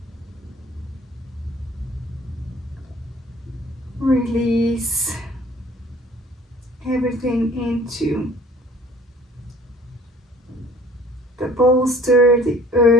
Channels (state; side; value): normal; both; correlation 0.52